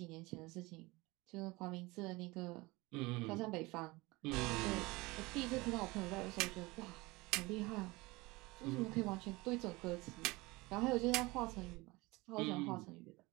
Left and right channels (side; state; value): left; quieter; 22.7 dB